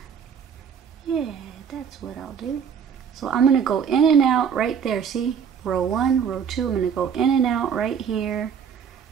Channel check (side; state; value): left; quieter; 7.2 dB